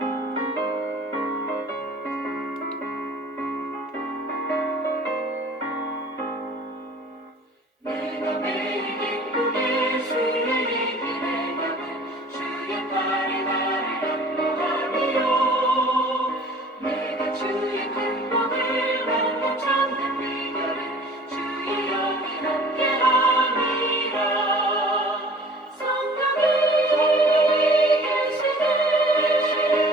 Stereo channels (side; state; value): both; normal; correlation 0.48